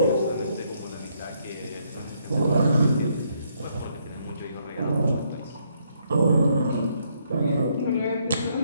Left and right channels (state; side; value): inverted; both; correlation -0.73